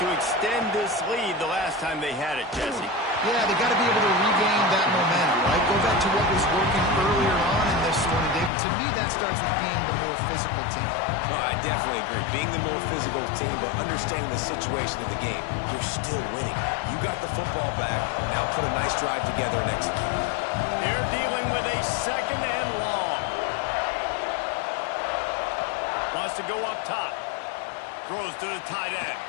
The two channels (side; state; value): right; drops out; at 8.5 s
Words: extend this lead the last time they had it, Jesse. Yeah, they got to be able to regain that momentum, right? Go back to what was working earlier on in this one, and David. To me, that starts with being the more physical team. No, I definitely agree. Being the more physical team, but understanding the situation of the game. You're still winning. You got the football back. Now put a nice drive together and execute. They're dealing with a second and long. Wants to go up top. Throws to the tight end.